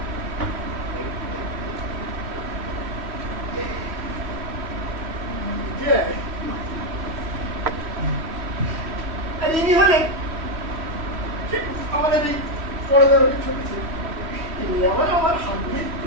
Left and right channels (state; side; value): late; left; 3.1 ms